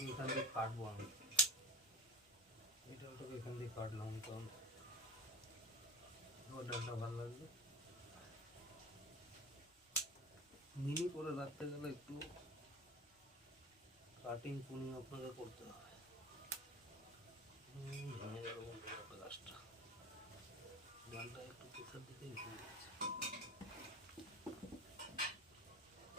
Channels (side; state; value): both; normal; correlation 0.32